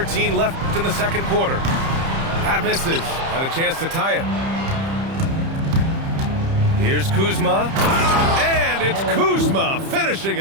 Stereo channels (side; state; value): left; late; 30 ms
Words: left in the second quarter. That misses. Had a chance to tie it. Here's Kuzma. And it's Kuzma finishing